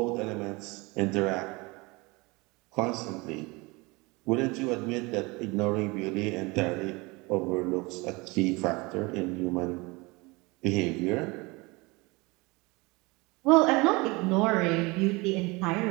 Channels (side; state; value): left; quieter; 25.1 dB